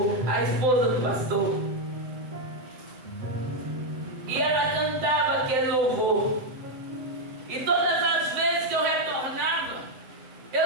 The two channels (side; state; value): left; late; 7.9 ms